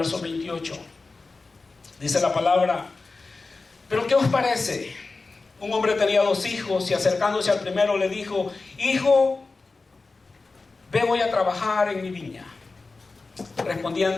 28. Dice la palabra: pero ¿qué os parece? Un hombre tenía 2 hijos y acercándose al primero le dijo: hijo, ve hoy a trabajar en mi viña.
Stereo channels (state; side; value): quieter; right; 3.8 dB